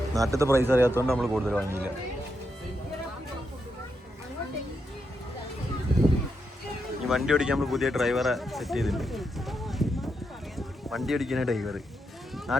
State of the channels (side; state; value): both; normal; correlation 0.83